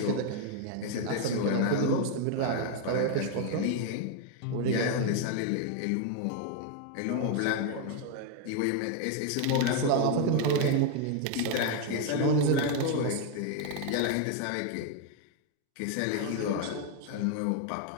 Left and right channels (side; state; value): both; different; correlation 0.01